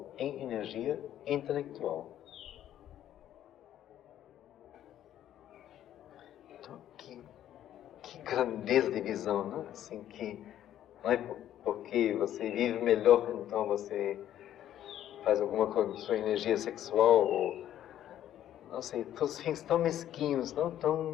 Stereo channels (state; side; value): quieter; right; 11.6 dB